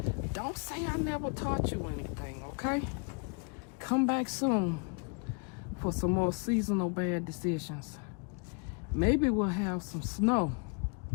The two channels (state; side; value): quieter; right; 35.3 dB